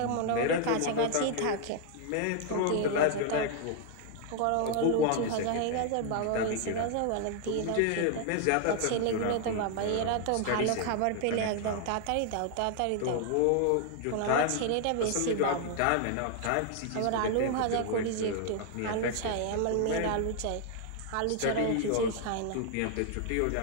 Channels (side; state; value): both; different; correlation 0.00